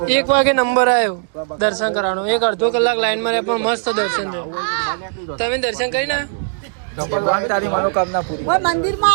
1 વાગે નંબર આવ્યો દર્શન કરવાનો. 1-અડધો કલાક લાઈનમાં રહ્યા પણ મસ્ત દર્શન થયો. તમે દર્શન કરી ના?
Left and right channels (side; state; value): left; silent; digital silence